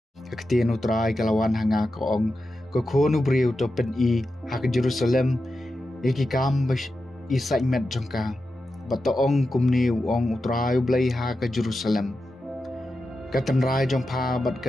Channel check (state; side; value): normal; both; correlation 0.90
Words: Kaktian utrai kalawan hanga kaong kokonu briu to pen I hak Jerusalem iki kam isai met jongka batoong kumni ong utrai blai ha ke Jerusalem katan rai jongpa bat